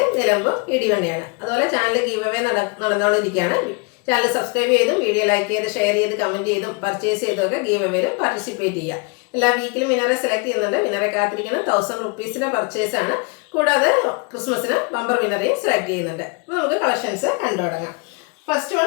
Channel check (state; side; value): quieter; right; 31.6 dB